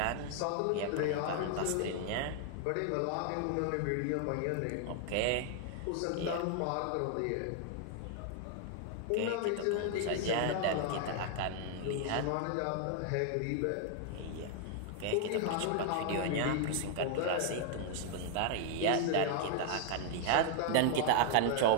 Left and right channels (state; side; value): different; both; correlation 0.00